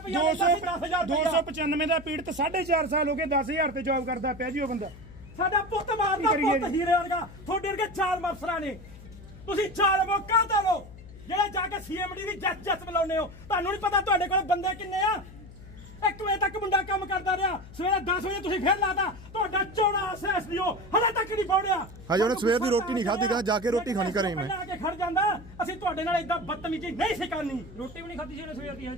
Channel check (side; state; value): left; noise; hum, 18 dB below the sound